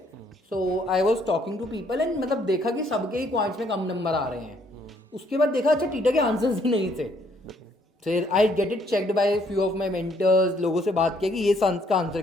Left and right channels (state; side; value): normal; both; correlation 0.67